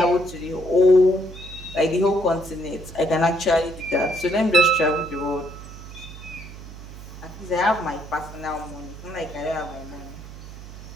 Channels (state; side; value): noise; right; hum, 14 dB below the sound